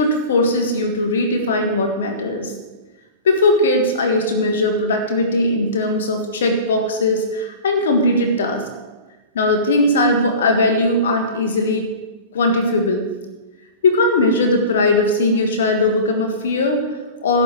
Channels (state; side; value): inverted; both; correlation -0.38